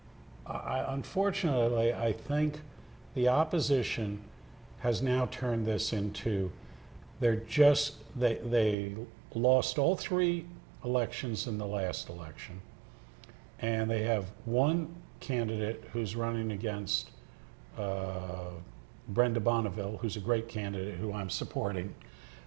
unfortunately, I think the opposition has now turned this into, they lost all three elections in the last election. And they have one candidate who's running against Brenda Bonneville, who's a great candidate who I'm supporting.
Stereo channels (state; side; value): drops out; left; at 8.8 s